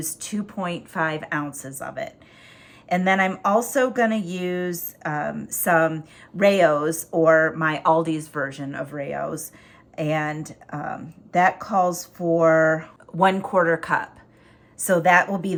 2.5 ounces of it. And then I'm also gonna use some Rayo's, or my Aldi's version of Rayo's, and that calls for 1/4 cup. So that will be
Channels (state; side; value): identical; both; correlation 1.00